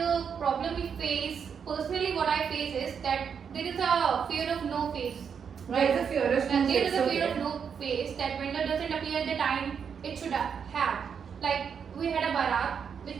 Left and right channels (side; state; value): left; quieter; 7.0 dB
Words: problem we face, personally what I face is that there is a fear of no face. There is a fear of no face. There is a fear of no face that vendor doesn't appear at the time it should have. Like we had a barat which